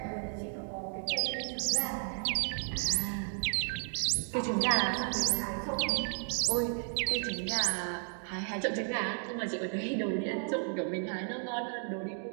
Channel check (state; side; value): silent; left; 55 dB below the other